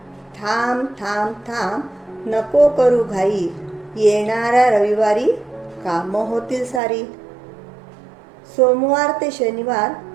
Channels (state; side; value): drops out; left; at 6.8 s